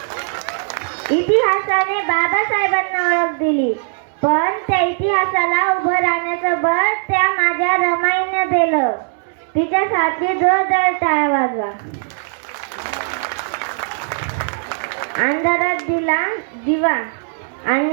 इतिहासाने बाबासाहेबांना ओळख दिली, पण त्या इतिहासाला उभं राहण्याचं बळ त्या माझ्या रमाईने दिलं. तिच्यासाठी जोरदार टाळ्या वाजवा. अंधारात दिला दिवा,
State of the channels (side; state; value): left; silent; 67 dB below the other